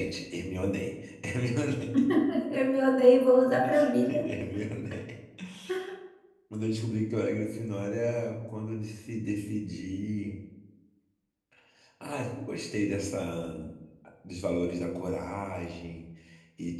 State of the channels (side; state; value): both; identical; correlation 1.00